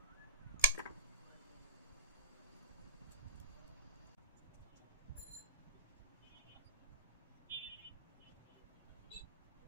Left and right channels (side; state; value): both; inverted; correlation -0.31